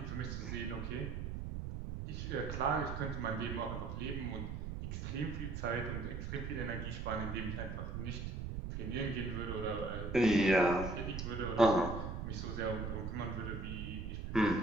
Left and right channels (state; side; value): noise; right; rumble, 5 dB below the sound